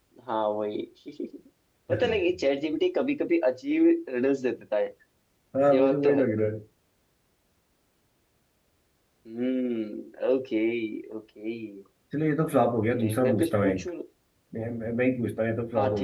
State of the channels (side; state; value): both; identical; correlation 1.00